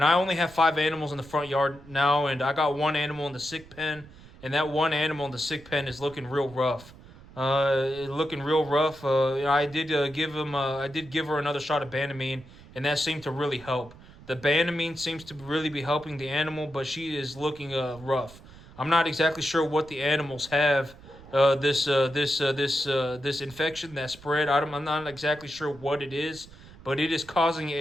I only have 5 animals in the front yard now, and I got one animal in the sick pen, and that one animal in the sick pen is looking real rough. Looking real rough. I did I did give her another shot of Banamine, and that seemed to really help. The Banamine seems to really be helping the animal, but she is looking rough. I'm not exactly sure what the animals have. This infection that spread. I'm not exactly sure what it is, but it is causing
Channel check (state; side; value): noise; right; rumble, 20 dB below the sound